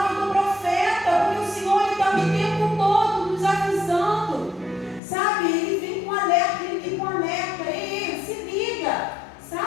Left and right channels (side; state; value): right; drops out; at 5.0 s